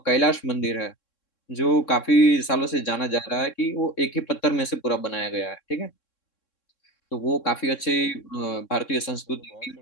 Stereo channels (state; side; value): late; right; 3.6 ms